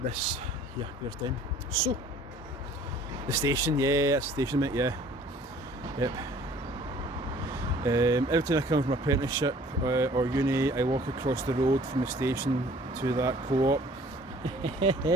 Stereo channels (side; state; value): both; normal; correlation 0.53